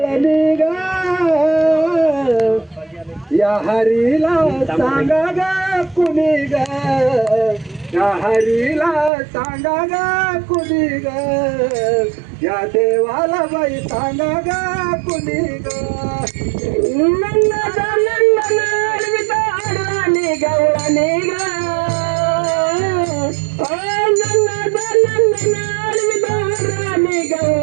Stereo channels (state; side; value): drops out; left; at 9.1 s